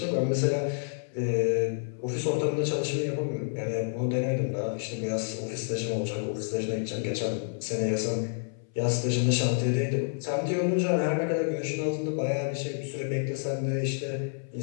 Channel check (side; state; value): right; silent; 59 dB below the other